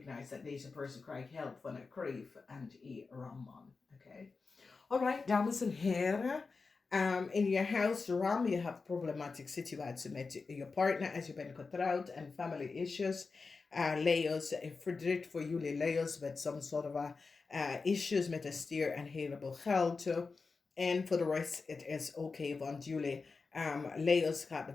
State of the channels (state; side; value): quieter; right; 4.4 dB